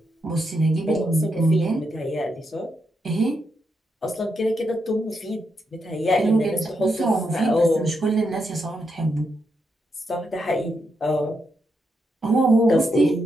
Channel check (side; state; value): both; normal; correlation 0.82